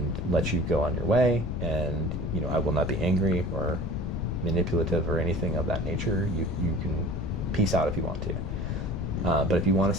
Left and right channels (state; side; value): noise; left; rumble, 4 dB below the sound